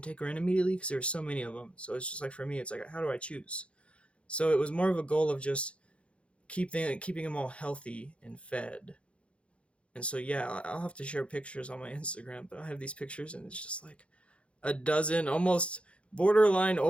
take her in immediately, because there were so many of them. So it's just like, for me, it's like, how do I choose? So it was more of a goal of just keeping them all healthy and fed. And so, yeah, I'll have to share pictures on my Instagram, but I have these pictures, and it's just like a dozen almost borderline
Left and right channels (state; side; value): late; right; 0.060 ms